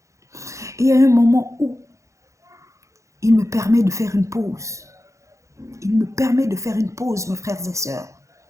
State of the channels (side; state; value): left; late; 0.15 ms